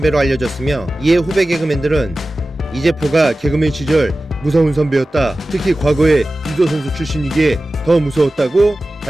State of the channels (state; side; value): normal; both; correlation 0.96